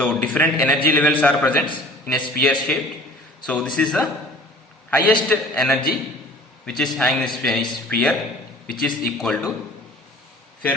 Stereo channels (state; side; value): normal; both; correlation 0.46